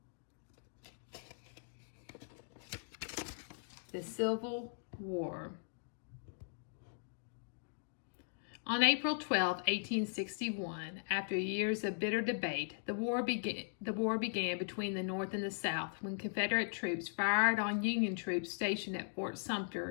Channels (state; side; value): silent; right; digital silence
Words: The Civil War. On April 12, 1861, after years of bitter debate, the war began between the North and the South when Confederate troops fired on Union troops stationed at Fort